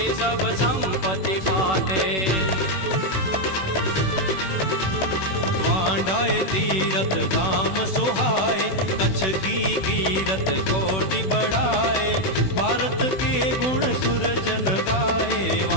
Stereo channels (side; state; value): right; late; 16 ms